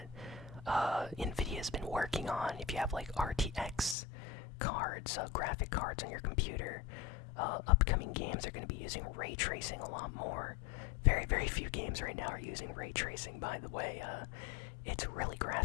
NVIDIA has been working on. If you have like RTX cards, graphic cards on your computer, upcoming games are going to be using ray tracing a lot more. Very, very few games right now are using ray tracing, by the way. It's really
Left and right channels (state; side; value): drops out; right; at 4.0 s